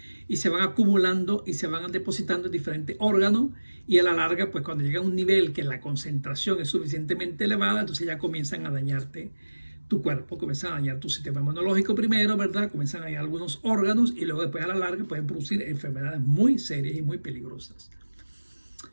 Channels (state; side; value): inverted; both; correlation -1.00